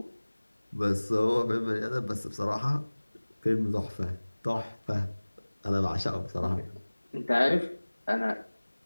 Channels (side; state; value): both; inverted; correlation -1.00